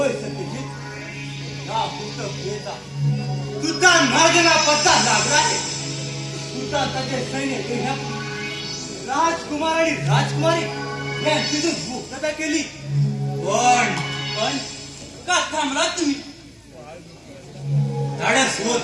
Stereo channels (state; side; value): identical; both; correlation 1.00